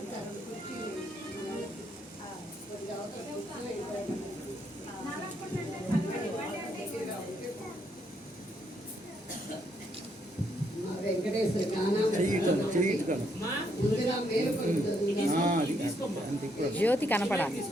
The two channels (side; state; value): both; normal; correlation 0.74